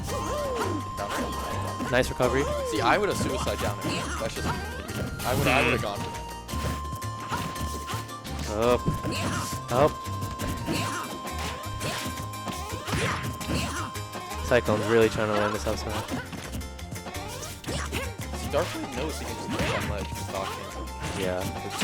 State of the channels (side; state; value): both; identical; correlation 1.00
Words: Nice recovery. See, I would have suicide down there. That's just, I would have gone. Up. Up. Cyclone's really trying to land this up smash. Darkblade knows he can just play on ledge. Yeah.